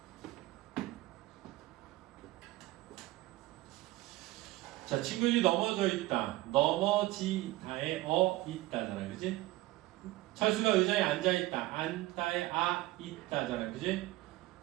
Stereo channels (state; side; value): quieter; left; 18.1 dB